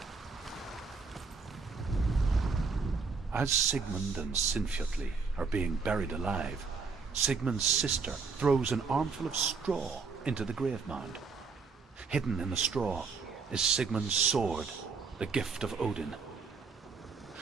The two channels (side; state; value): left; quieter; 4.9 dB